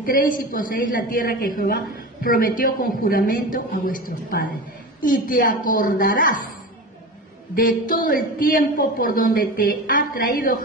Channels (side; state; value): both; normal; correlation 0.28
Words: y poseéis la tierra que Jehová prometió con juramento a vuestros padres. Y te acordarás de todo el tiempo por donde te ha traído